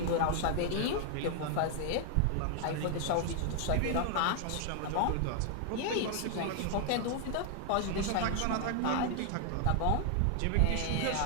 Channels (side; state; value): both; different; correlation 0.00